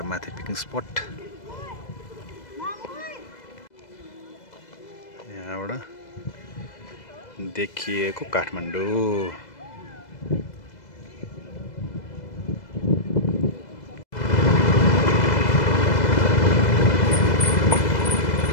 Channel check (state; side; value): late; right; 2.0 ms